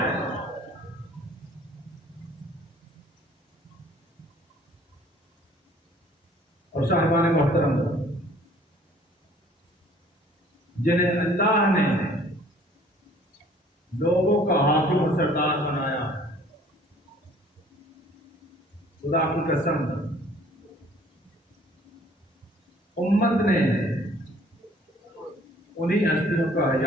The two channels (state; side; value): normal; both; correlation 0.55